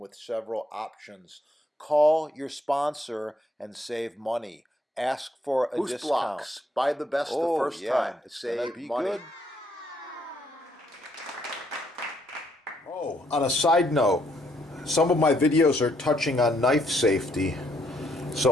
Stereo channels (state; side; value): normal; both; correlation 0.71